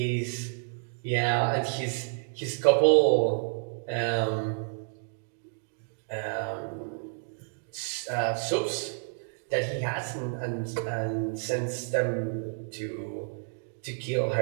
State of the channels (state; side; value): silent; left; digital silence